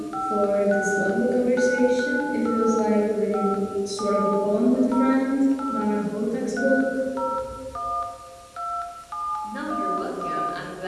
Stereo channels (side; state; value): both; identical; correlation 1.00